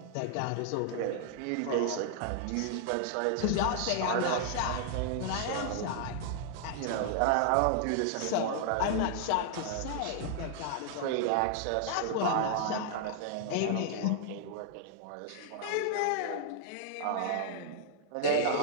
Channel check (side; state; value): both; different; correlation -0.01